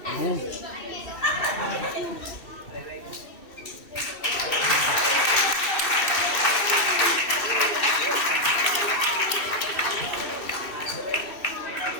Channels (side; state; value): right; late; 2.6 ms